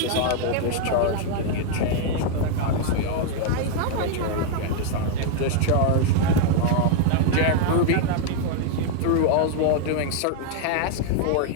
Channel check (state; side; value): different; both; correlation 0.00